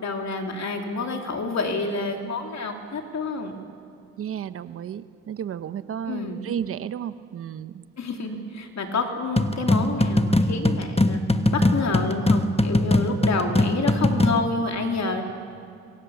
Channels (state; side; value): normal; both; correlation 0.62